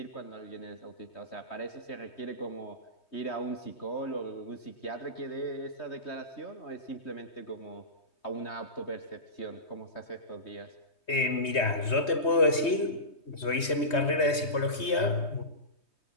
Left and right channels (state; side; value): late; right; 3.2 ms